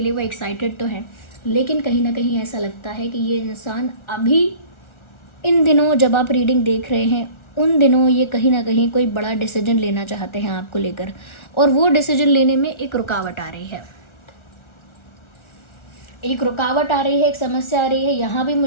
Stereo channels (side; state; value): right; late; 1.4 ms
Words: लिए वो एक्साइटेड तो हैं, लेकिन कहीं ना कहीं ऐसा लगता है कि ये इंसान अभी इन दिनों जब आप रीडिंग देख रहे हैं उन दिनों ये कहीं ना कहीं कोई बड़ा डिसीजन लेना चाहते हैं आपको लेकर, और वो डिसीजन लेने में एक रुकावट आ रही है, एक रुकावट आ रही है, एक समस्या आ रही है। यहाँ भी